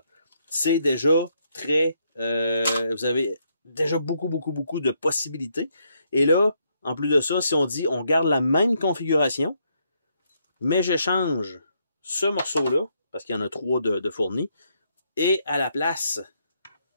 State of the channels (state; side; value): inverted; both; correlation -0.75